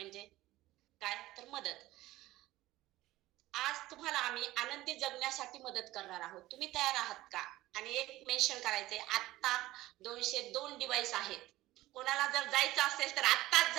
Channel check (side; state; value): left; quieter; 17.0 dB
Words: काय? तर मदत. आज तुम्हाला आम्ही आनंदी जगण्यासाठी मदत करणार आहोत. तुम्ही तयार आहात का? आणि एक मेन्शन करायचंय, आता 202 डिव्हाइस आहेत. कोणाला जर जायचं असेल तर आत्ताच